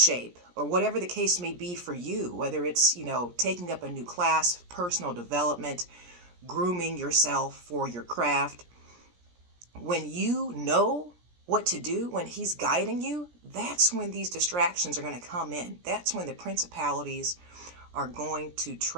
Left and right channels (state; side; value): late; left; 17 ms